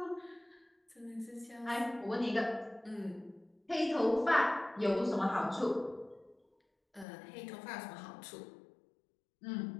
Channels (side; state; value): right; drops out; at 7.1 s